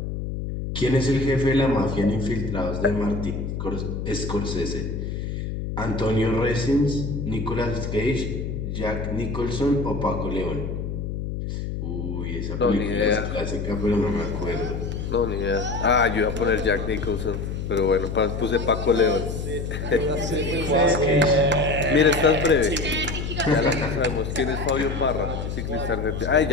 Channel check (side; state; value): left; noise; hum, 4 dB below the sound